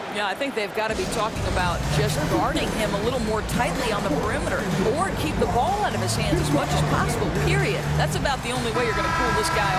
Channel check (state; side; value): identical; both; correlation 1.00